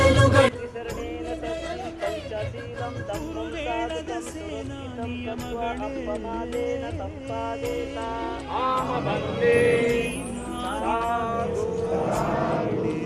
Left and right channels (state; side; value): identical; both; correlation 1.00